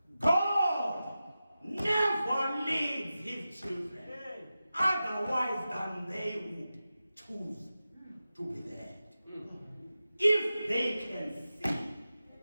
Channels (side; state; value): both; inverted; correlation -0.93